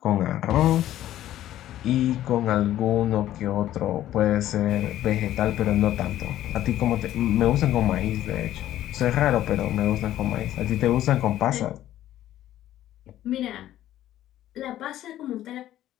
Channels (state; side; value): quieter; right; 13.1 dB